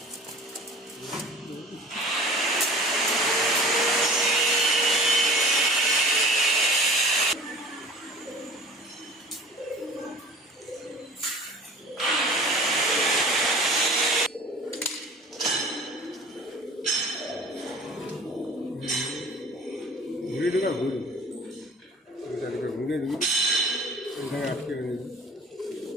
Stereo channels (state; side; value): normal; both; correlation 0.44